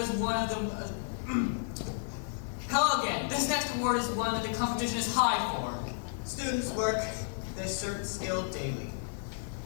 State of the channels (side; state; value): right; silent; digital silence